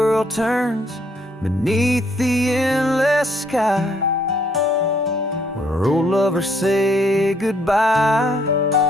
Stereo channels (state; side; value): normal; both; correlation 0.68